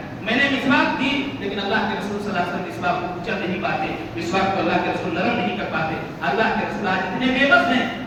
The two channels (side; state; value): both; identical; correlation 1.00